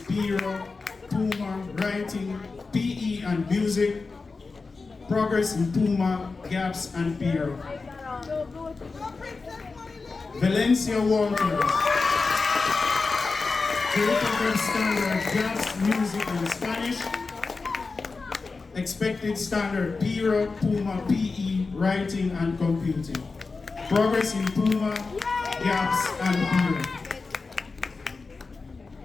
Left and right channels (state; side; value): quieter; right; 4.1 dB